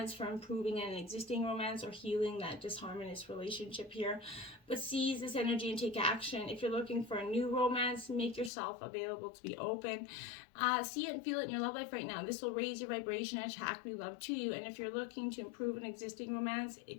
for improving an existing romance, or healing that disharmonious relationship here. But seize this energy and take action. If you're looking for a new romance, make yourself available to be open. See it and feel it in your love life right now. This will raise your vibration and attract new love to you. And if you're looking to improve an existing romance,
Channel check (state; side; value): drops out; right; at 8.5 s